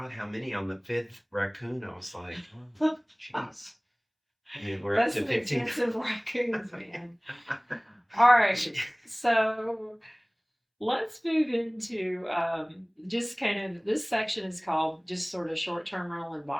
how many on the 5th raccoon? I was like, oh, jeez. Yeah, we're That's up to some 15. expensive raccoons, man. All right, so let's move into just kind of this section is called just sort of short-term rental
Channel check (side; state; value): both; identical; correlation 1.00